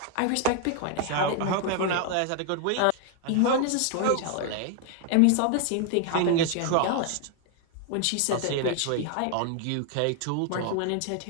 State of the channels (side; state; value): both; different; correlation 0.00